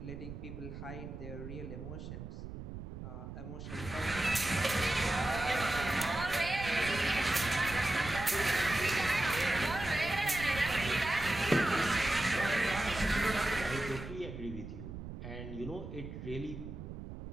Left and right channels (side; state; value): right; noise; rumble, 10 dB below the sound